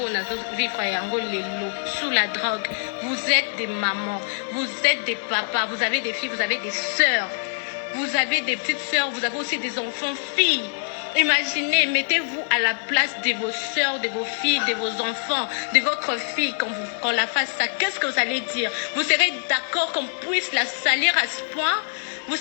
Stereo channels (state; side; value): silent; right; digital silence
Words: vivre sous la drogue. Vous êtes des mamans, vous êtes des papas, vous avez des filles, vous avez des sœurs, vous avez des petites sœurs, vous avez aussi des enfants, filles. Imaginez, mettez-vous à la place de vos sœurs, de vos filles, de vos enfants, de votre fille quand la fasse ça. Qu'est-ce que vous allez dire? Vous serez d'accord qu'on puisse la salir à ce point? Vous